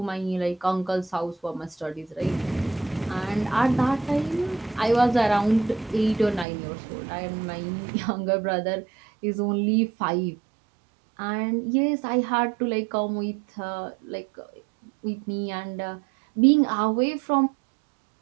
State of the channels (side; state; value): left; drops out; at 6.5 s